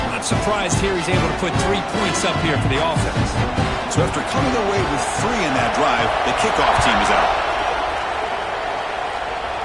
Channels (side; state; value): both; identical; correlation 1.00